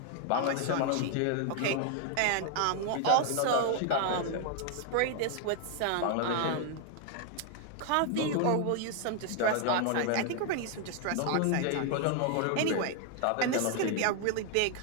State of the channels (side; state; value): both; different; correlation 0.00